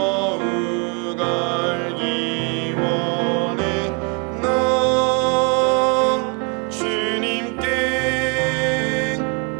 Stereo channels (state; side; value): quieter; left; 34.0 dB